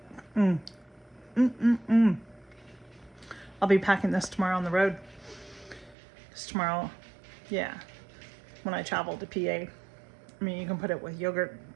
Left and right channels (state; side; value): drops out; left; at 6.0 s